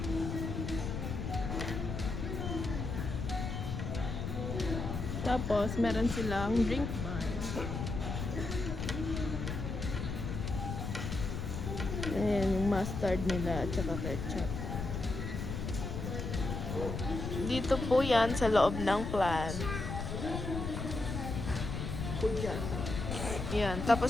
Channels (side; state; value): left; noise; rumble, 4 dB below the sound